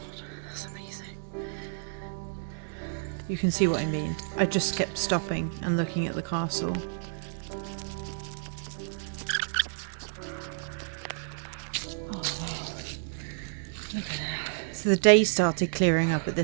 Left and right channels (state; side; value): silent; left; digital silence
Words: that's amazing. You can see what I mean. I just kept stopping and looking at the castle. Oh wow. Look at that. So the day started clearing up at